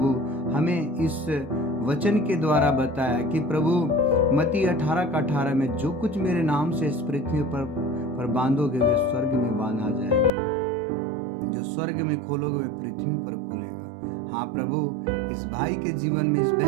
हमें इस वचन के द्वारा बताया कि प्रभु मत्ती 18:18 में जो कुछ मेरे नाम से इस पृथ्वी पर बांधोगे वे स्वर्ग में बांधा जाएगा, जो स्वर्ग में खोलोगे वे पृथ्वी पर खुलेगा। हाँ प्रभु, इस भाई के जीवन में, इस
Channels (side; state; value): left; drops out; at 10.3 s